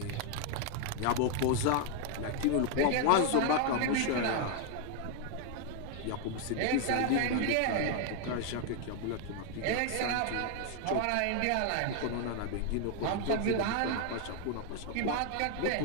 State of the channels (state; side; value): different; both; correlation 0.00